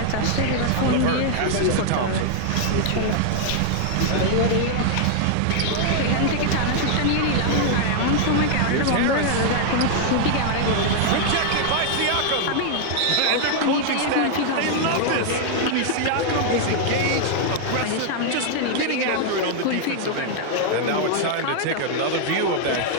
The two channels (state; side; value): different; both; correlation -0.01